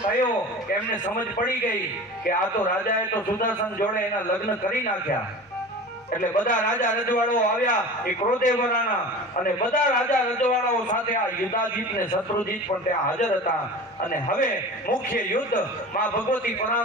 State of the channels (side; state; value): both; normal; correlation 0.35